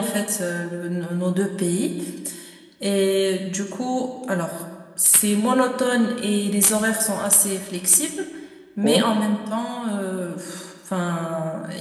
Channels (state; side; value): identical; both; correlation 1.00